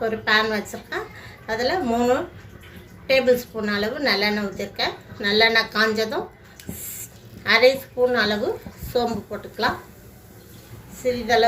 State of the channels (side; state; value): both; identical; correlation 1.00